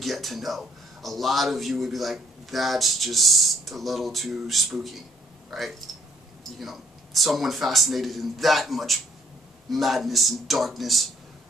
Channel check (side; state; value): both; normal; correlation 0.65